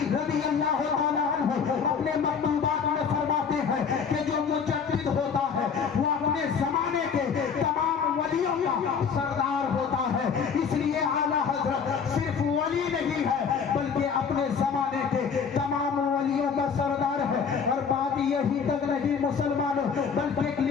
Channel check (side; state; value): right; quieter; 6.3 dB